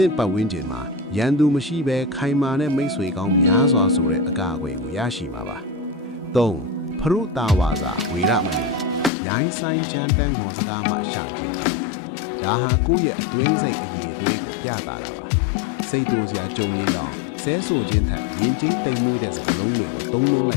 င့်ပတ်ဝန်းကျင်မှာရန်သူမရှိဘဲခိုင်မာတဲ့မိတ်ဆွေကောင်းများစွာဆိုတဲ့အကာအကွယ်ကိုရရှိမှာပါ။ 3. ဖရုတာဝါစာဝေရမဏီရိုင်းဆိုင်ချမ်းတန်းဟောစကားမှရှောင်ကျင်ခြင်းဒါဟာကိုယ့်ရဲ့အတွင်းစိတ်အရေးအသွေးကိုပြသတာပါစိတ်တိုးစရာကြုံရင်တော့ဆဲဆိုခြင်းထက်ယဉ်ကျေးတိမ်မွေးတဲ့စကားလုံးတွေကိုသုံးလုံးလိ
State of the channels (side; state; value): right; drops out; at 9.1 s